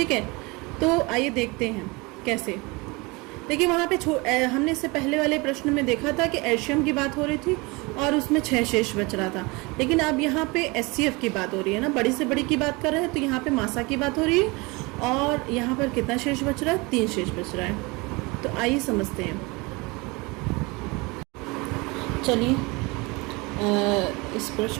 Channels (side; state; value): left; quieter; 25.7 dB